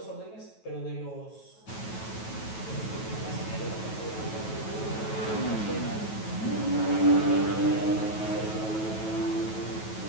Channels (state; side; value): late; right; 9.2 ms